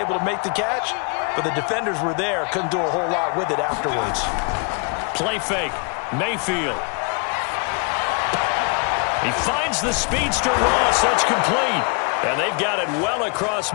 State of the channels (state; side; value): quieter; right; 36.2 dB